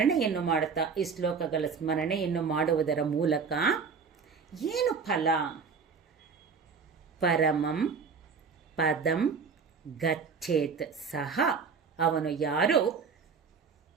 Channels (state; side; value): quieter; left; 5.6 dB